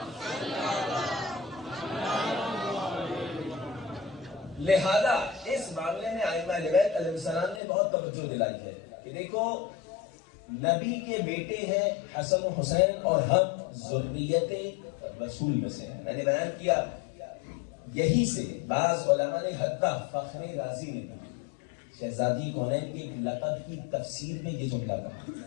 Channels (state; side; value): drops out; right; at 7.6 s